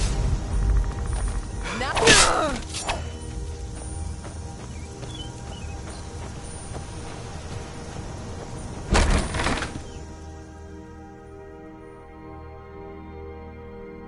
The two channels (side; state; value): both; identical; correlation 1.00